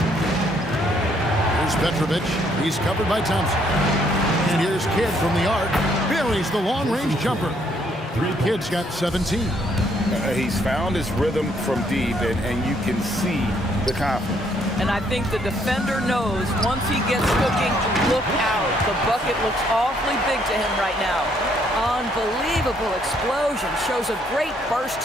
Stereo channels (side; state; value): both; normal; correlation 0.69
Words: Here's Petrovic. He's covered by Thompson. And here's Kidd from the arc. Buries the long-range jumper. Kidd's got 17. He's found his rhythm from deep, and you can see the confidence. And I think the defender knows once he gets cooking, look out. The bucket looks awfully big to him right now. Unbelievable explosion. Shows a great burst